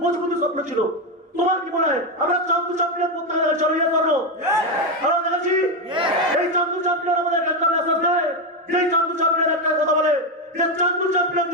মজবুত স্বপ্ন ছিল। তোমার কি মনে হয় আমরা চান্দু চ্যাম্পিয়ন করতে গেলে চলো ইয়ে করো? আমরা দেখেছি এই চান্দু চ্যাম্পিয়ন আমাদের একটা মেসেজ দেয়, যে চান্দু চ্যাম্পিয়ন একটা কথা বলে যে চান্দু চ্যাম্পিয়ন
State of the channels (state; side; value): normal; both; correlation 0.09